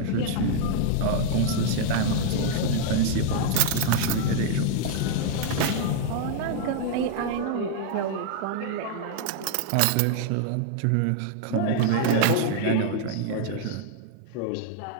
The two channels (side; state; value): both; different; correlation -0.01